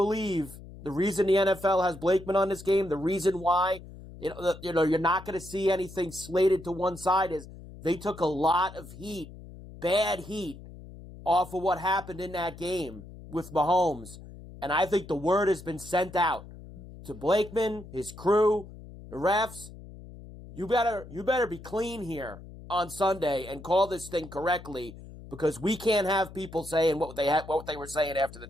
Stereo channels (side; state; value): left; noise; hum, 16 dB below the sound